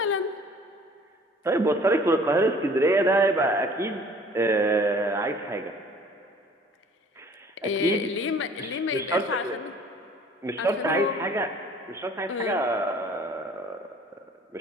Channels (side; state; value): both; normal; correlation 0.52